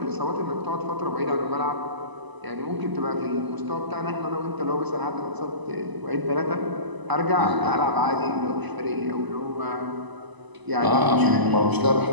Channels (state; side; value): late; left; 1.0 ms